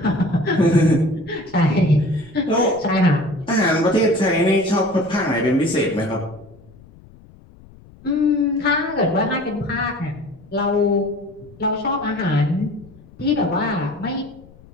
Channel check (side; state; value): left; noise; rumble, 24 dB below the sound